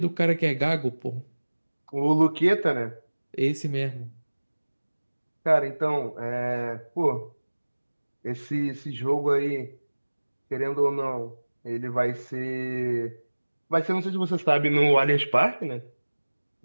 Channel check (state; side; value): inverted; both; correlation -1.00